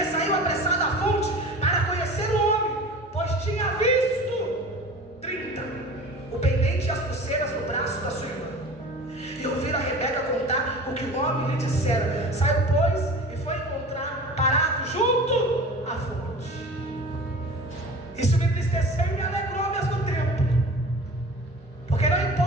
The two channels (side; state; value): both; normal; correlation 0.38